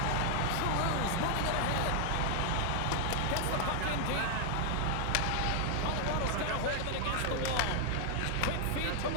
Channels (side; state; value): both; different; correlation 0.00